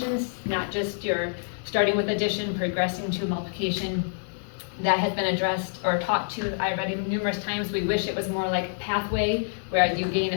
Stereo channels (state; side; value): silent; right; digital silence